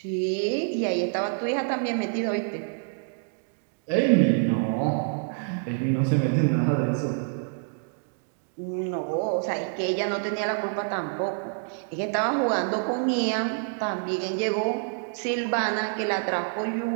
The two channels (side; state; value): left; silent; digital silence